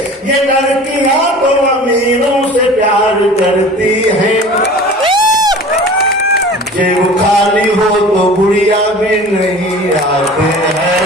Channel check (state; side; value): normal; both; correlation 0.41